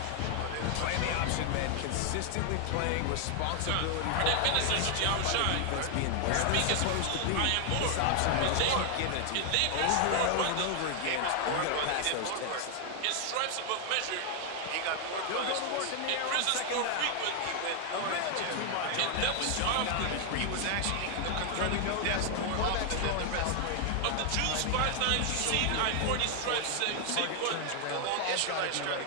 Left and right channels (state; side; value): different; both; correlation 0.00